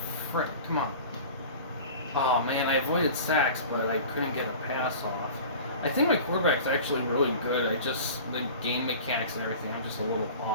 frick, come on. Oh man, I avoided sacks, but I couldn't get a pass off. I think my quarterback's actually really good. The game mechanics and everything, I'm just a little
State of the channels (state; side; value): inverted; both; correlation -0.39